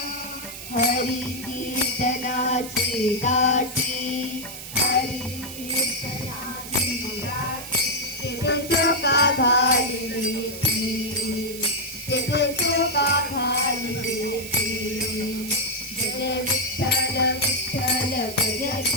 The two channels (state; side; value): noise; right; hiss, 11 dB below the sound